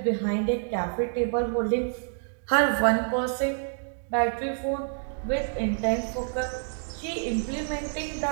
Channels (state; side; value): silent; left; 58 dB below the other